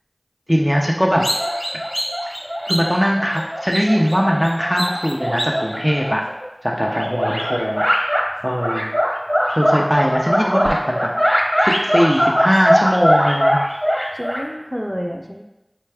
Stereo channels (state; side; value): identical; both; correlation 1.00